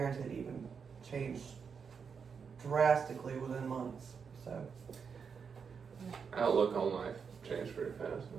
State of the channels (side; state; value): left; quieter; 6.2 dB